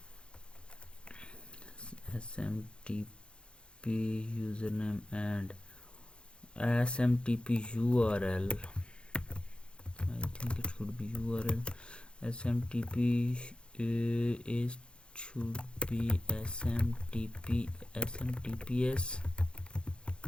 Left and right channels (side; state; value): right; late; 0.055 ms